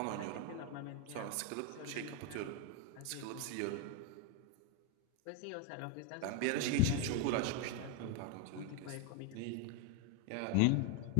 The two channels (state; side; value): different; both; correlation 0.01